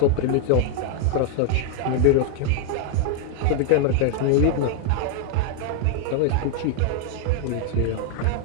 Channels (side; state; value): both; different; correlation 0.00